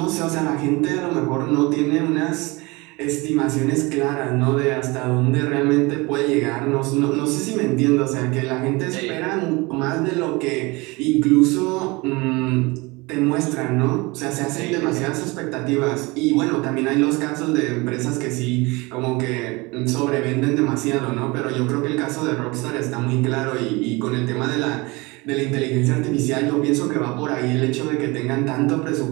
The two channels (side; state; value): left; quieter; 24.5 dB